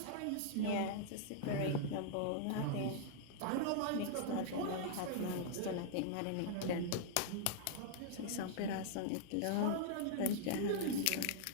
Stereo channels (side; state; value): both; different; correlation -0.01